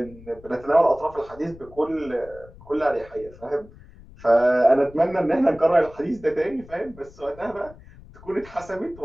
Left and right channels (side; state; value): left; noise; rumble, 21 dB below the sound